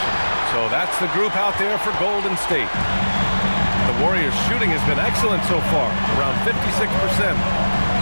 So that's the group out there for Golden State. The Warriors' shooting has been excellent so far, around 56%.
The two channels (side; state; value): both; inverted; correlation -1.00